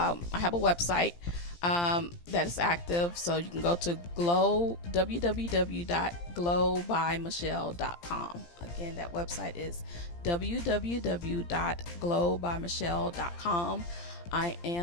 a website that is active, so you can go to www.glowbymichelle.com. Again, that website is www.glowbymichelle.com. I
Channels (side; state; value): right; late; 17 ms